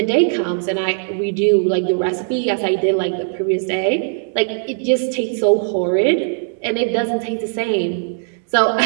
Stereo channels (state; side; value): silent; left; 66 dB below the other